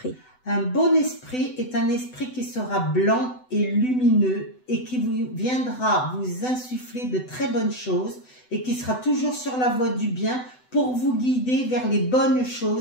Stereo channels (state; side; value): late; right; 7.9 ms